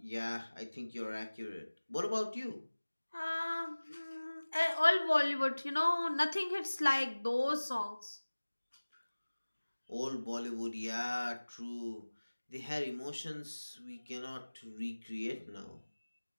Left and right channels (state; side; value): inverted; both; correlation -1.00